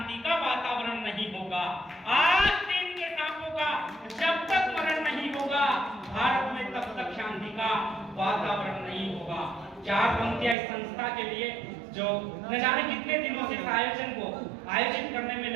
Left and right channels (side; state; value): left; drops out; at 10.6 s